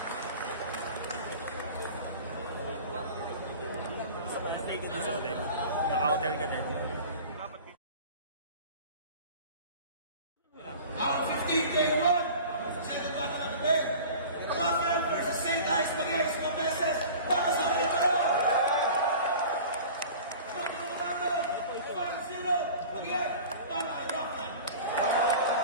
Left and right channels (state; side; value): inverted; both; correlation -0.40